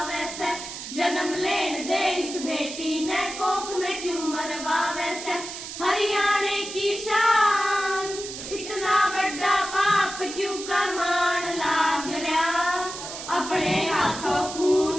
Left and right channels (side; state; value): right; noise; hiss, 9 dB below the sound